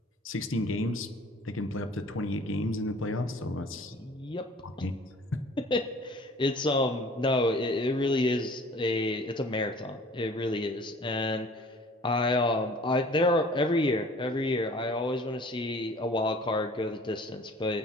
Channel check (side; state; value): both; normal; correlation 0.49